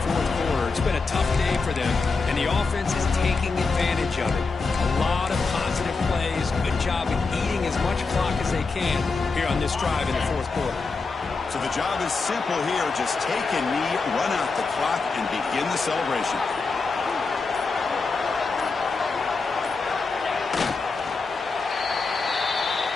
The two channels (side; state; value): right; quieter; 4.2 dB